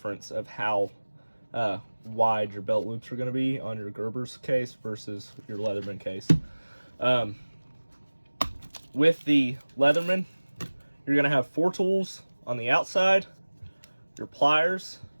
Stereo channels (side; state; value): both; inverted; correlation -1.00